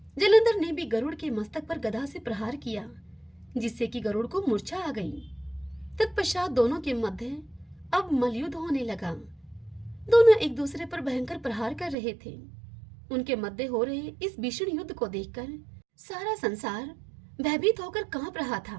जलंधर ने भी गरुड़ के मस्तक पर गदा से प्रहार किया, जिससे कि गरुड़ को मूर्छा आ गई। तत्पश्चात दोनों के मध्य अब मलयुद्ध होने लगा। दोनों एक दूसरे पर भयंकर प्रहार कर रहे थे। उनके मध्य हो रहे इस भीषण युद्ध को देखकर सारा संसार भयभीत होकर कांप रहा था।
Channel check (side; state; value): left; drops out; at 12.0 s